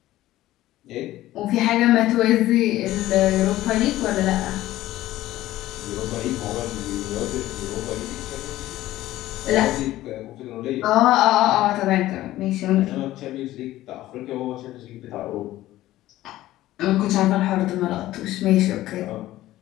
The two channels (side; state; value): right; quieter; 15.3 dB